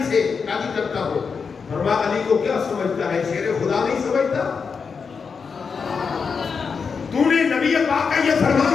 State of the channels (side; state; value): right; quieter; 5.6 dB